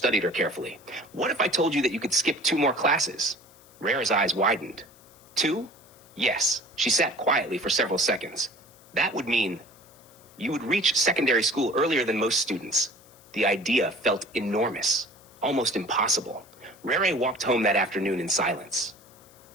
her carefully. What if I told you that you could skip 2 more classes? Rare's eyes widened. 2? Yes. She sat quietly for several seconds. That would mean you would reach secondary school earlier than most students. The idea felt enormous, almost impossible. Rere walked home that afternoon in silence.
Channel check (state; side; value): noise; left; hiss, 26 dB below the sound